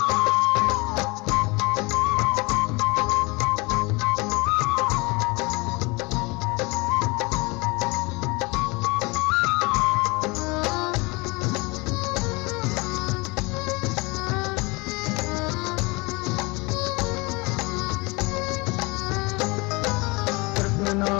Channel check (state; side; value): quieter; right; 26.1 dB